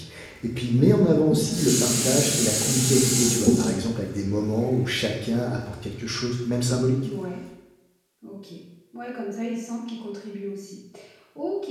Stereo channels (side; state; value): both; identical; correlation 1.00